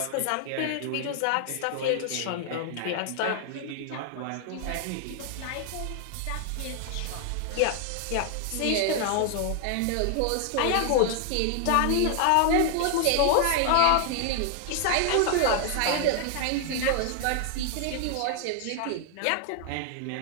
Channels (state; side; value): different; both; correlation 0.00